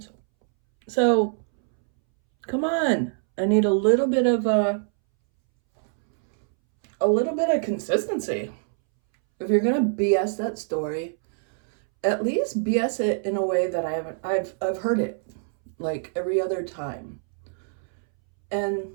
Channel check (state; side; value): silent; left; 62 dB below the other